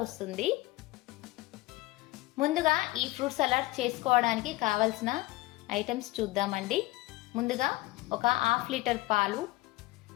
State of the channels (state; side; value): quieter; right; 20.0 dB